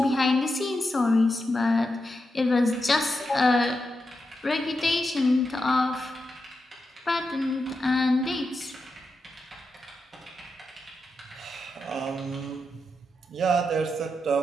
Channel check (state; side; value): normal; both; correlation 0.87